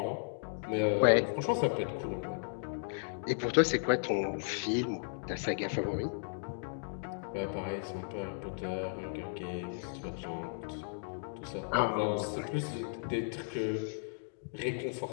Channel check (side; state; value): right; silent; digital silence